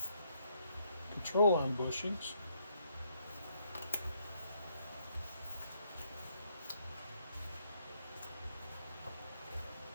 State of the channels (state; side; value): inverted; both; correlation -0.72